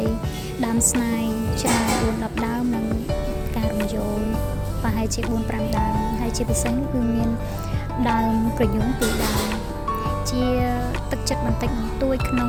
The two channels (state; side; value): identical; both; correlation 1.00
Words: យដើមស្នាយច្រើន4-10ដើមនិងការរំយោលប្រហែលជា4-5ដើមហើយជាពិសេសនោះគឺមានដើមក្រញូង2ដើមជាទឹកចិត្តបន្តិចបន្តួចក្នុ